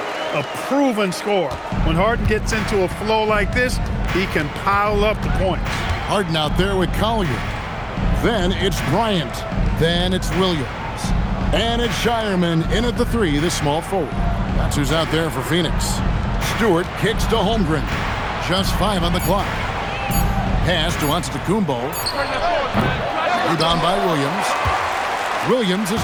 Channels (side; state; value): both; identical; correlation 1.00